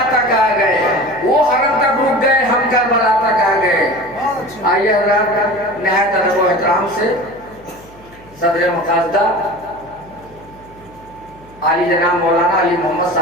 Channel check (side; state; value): left; noise; hum, 25 dB below the sound